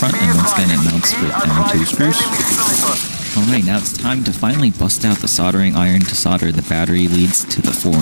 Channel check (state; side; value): inverted; both; correlation -1.00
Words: and once again it mounts with M2 screws. Alright, now it's time to finally bust out the soldering iron to solder the battery leads to the 4-in-1